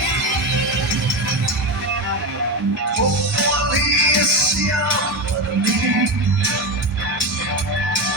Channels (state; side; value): normal; both; correlation 0.17